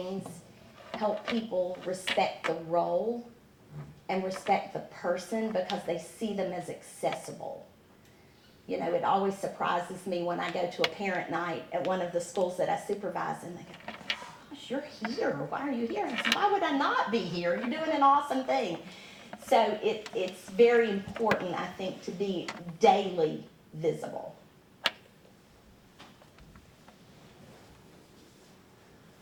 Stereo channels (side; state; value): both; identical; correlation 1.00